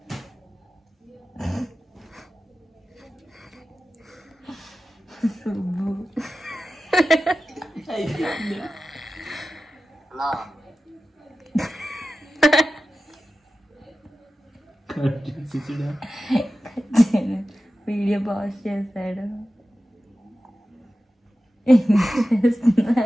వీడియో పాజ్ చేశాడు.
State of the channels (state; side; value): normal; both; correlation 0.94